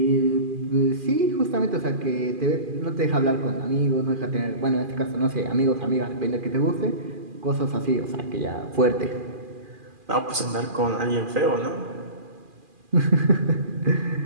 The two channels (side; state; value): left; late; 2.4 ms